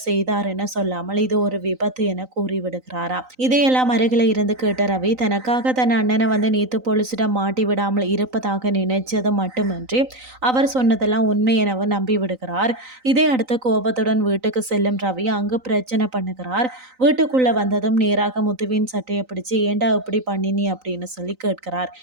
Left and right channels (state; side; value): late; left; 3.9 ms